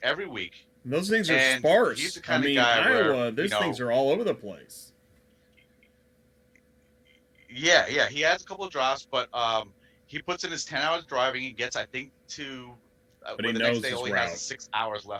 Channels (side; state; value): both; identical; correlation 1.00